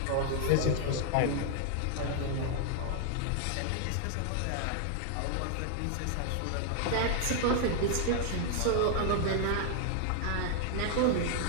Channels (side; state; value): both; different; correlation 0.00